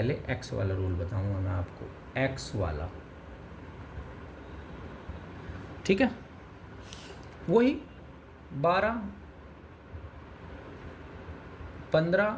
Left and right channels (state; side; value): identical; both; correlation 1.00